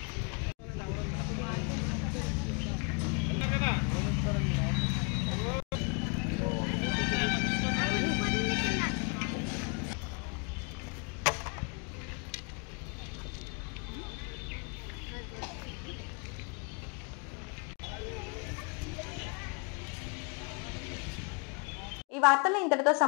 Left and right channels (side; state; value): right; quieter; 35.4 dB